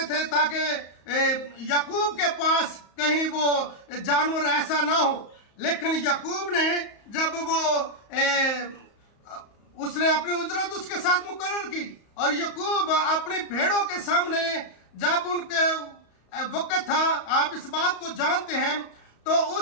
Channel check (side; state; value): right; late; 34 ms